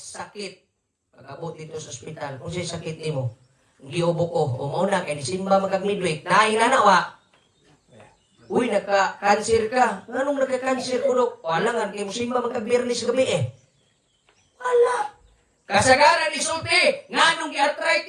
Pag-abot dito sa ospital, kung siya sakit nimo, giubo ko, umuna kay Disimba magag-midweek, nainanawa. Uy, nagka-cancer ka. Anong nagka-cancer ko, Dok? Wala nga, kay Musimba magag-birnis gabi Wala. Kasagaran ni Sulti, nganong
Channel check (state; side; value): identical; both; correlation 1.00